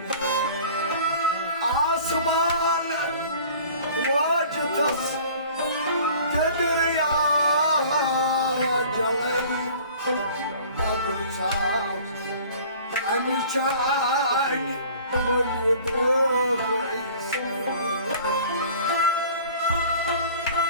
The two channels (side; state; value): both; inverted; correlation -0.47